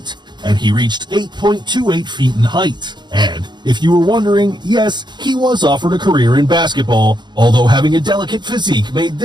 and he reached 8.28 feet in height. And if you were wondering, yes, he was offered a career in basketball, although having a delicate physique made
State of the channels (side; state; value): left; late; 0.21 ms